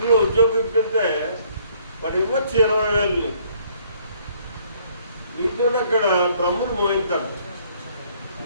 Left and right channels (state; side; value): inverted; both; correlation -0.61